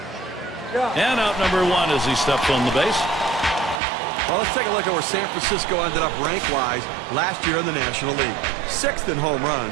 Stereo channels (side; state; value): left; drops out; at 3.8 s